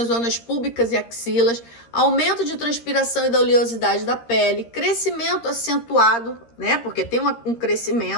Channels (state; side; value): late; right; 13 ms